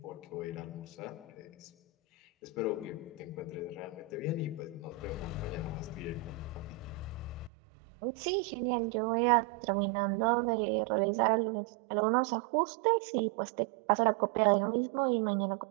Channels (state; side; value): drops out; left; at 7.5 s